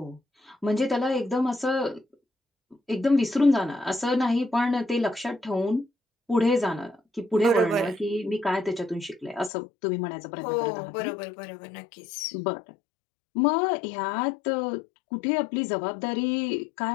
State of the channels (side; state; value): right; drops out; at 9.5 s